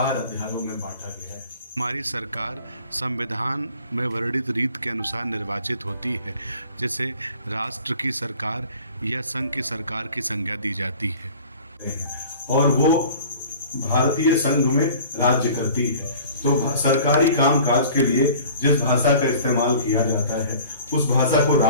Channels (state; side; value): inverted; both; correlation -0.46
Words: अध्यायों में बांटा गया है। हमारी सरकार संविधान में वर्णित रीत के अनुसार निर्वाचित होती है, जिसे राष्ट्र की सरकार या संघ की सरकार की संज्ञा दी जाती है और वो भारतीय संघ में राज्य करती है। तो सरकारी कामकाज के लिए जिस भाषा का इस्तेमाल किया जाता है उस भाषा को